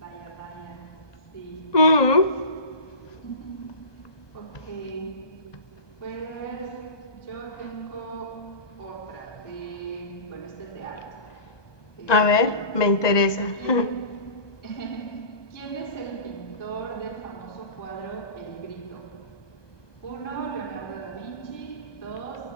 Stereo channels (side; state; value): right; late; 1.2 ms